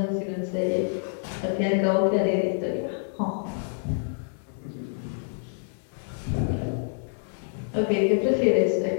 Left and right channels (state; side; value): silent; right; digital silence